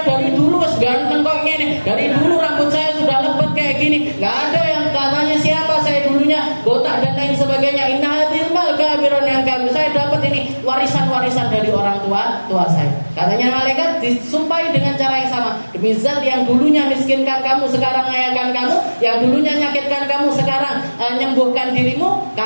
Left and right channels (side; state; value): both; inverted; correlation -1.00